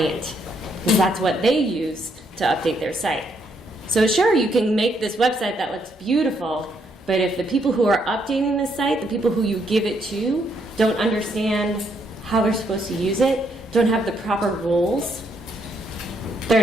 because that's what they use to update their site. So sure, you can make this website that looks beautiful, but if the people who are updating the site, the people who you give it to, don't understand how they're supposed to use it, don't have the proper rules, they're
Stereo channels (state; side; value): normal; both; correlation 0.74